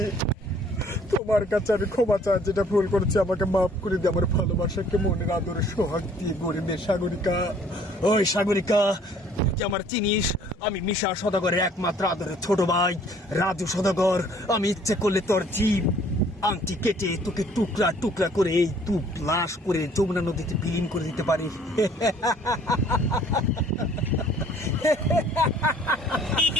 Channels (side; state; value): both; normal; correlation 0.57